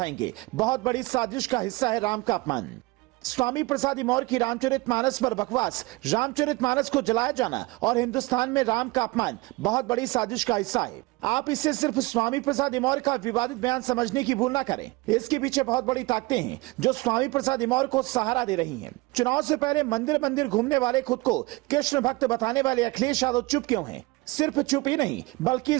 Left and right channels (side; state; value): left; quieter; 22.9 dB